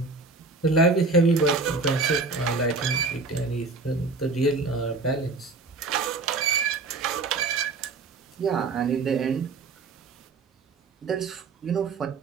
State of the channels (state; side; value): quieter; left; 3.9 dB